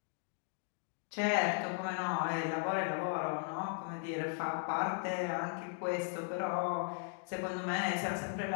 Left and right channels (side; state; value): right; silent; 53 dB below the other